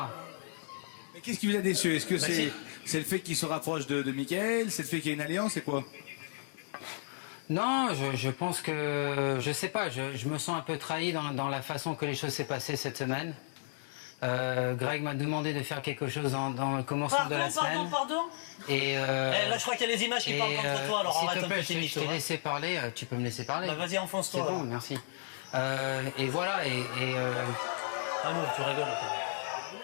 Mais qu'est-ce qui vous a déçu? Est-ce que c'est le fait qu'il se rapproche de Mickaël? C'est le fait qu'il y ait une alliance? C'est quoi? Non, je pense que... Je sais pas, je me sens un peu trahi dans la façon que les choses s'est passées cette semaine. Greg m'a demandé de faire quelque chose dans le commencement de la semaine. Pardon. Et là, je crois qu'il y a les images qui parlent contre toi, alors arrête un peu tes mythos. Je t'ai laissé parler, tu peux me laisser parler. Bah, vas-y, enfonce-toi. C'est bon, merci. Et voilà, Ah non, tu rigoles, quoi.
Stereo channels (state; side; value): silent; right; 55 dB below the other